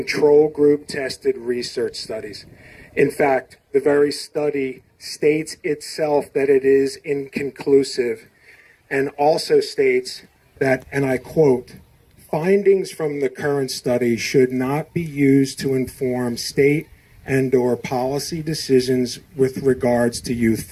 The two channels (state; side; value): identical; both; correlation 1.00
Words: group tested research studies. In fact, the very study states itself that it is inconclusive and also states that, and I quote, findings from the current study should not be used to inform state and/or policy decisions with regards to youth